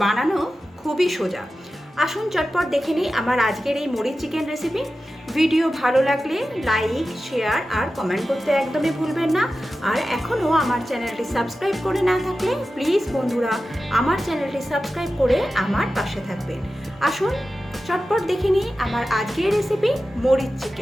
বানানো খুবই সোজা। আসুন চটপট দেখে নিই আমার আজকের এই মুড়ির চিকেন রেসিপি। ভিডিও ভালো লাগলে লাইক, শেয়ার আর কমেন্ট করতে একদমই ভুলবেন না। আর এখনও আমার চ্যানেলটি সাবস্ক্রাইব করে না থাকলে প্লিজ বন্ধুরা আমার চ্যানেলটি সাবস্ক্রাইব করে আমার পাশে থাকবেন। আসুন চটপট দেখে নিই আমার আজকের রেসিপি মুড়ির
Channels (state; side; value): normal; both; correlation 0.93